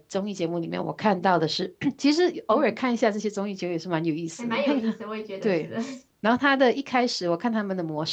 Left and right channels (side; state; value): both; identical; correlation 1.00